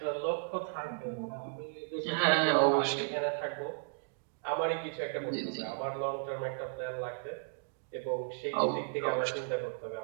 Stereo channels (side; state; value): left; silent; digital silence